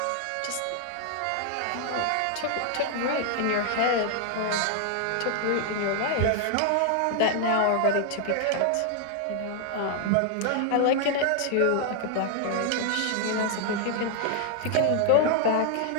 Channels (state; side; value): different; both; correlation 0.00